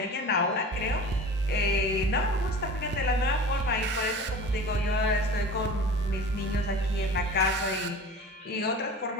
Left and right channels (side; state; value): both; normal; correlation 0.38